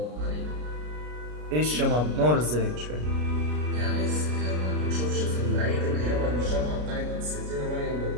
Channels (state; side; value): late; left; 33 ms